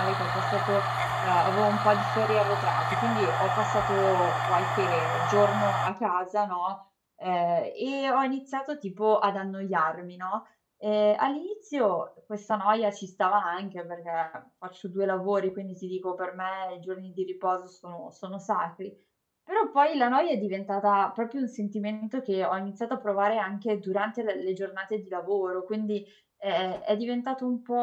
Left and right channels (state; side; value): identical; both; correlation 1.00